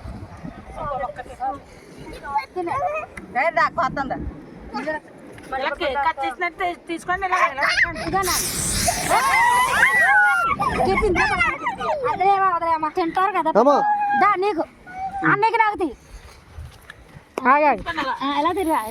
తీసుకోండి తింటారు కదా నీకు అన్నకి నాకు తీ ఎలా తిరిగా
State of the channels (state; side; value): identical; both; correlation 1.00